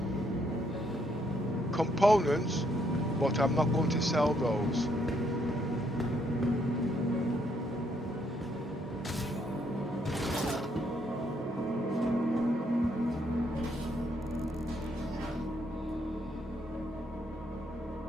components, but I'm not going to sell those.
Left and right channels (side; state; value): both; normal; correlation 0.72